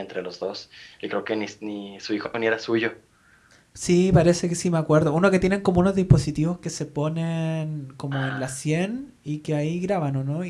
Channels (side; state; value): both; identical; correlation 1.00